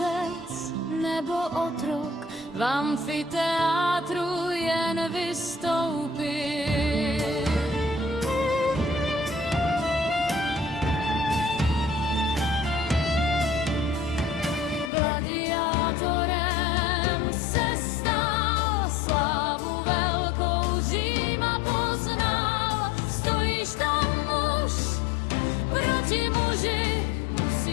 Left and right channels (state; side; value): drops out; right; at 14.9 s